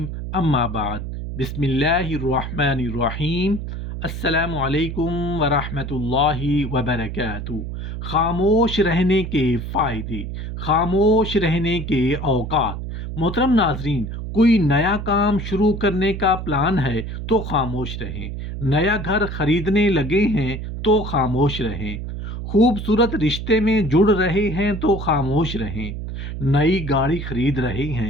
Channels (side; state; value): right; noise; hum, 6 dB below the sound